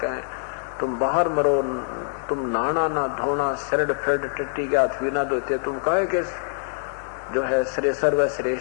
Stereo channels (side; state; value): right; silent; digital silence